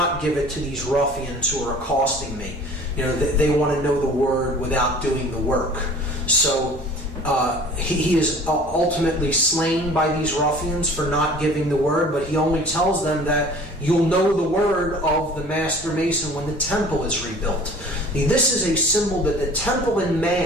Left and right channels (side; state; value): both; normal; correlation 0.46